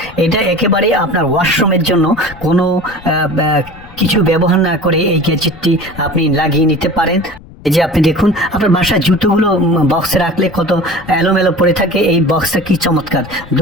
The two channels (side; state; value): left; noise; rumble, 21 dB below the sound